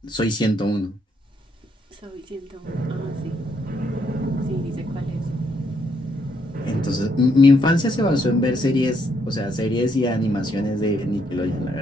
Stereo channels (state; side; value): normal; both; correlation 0.73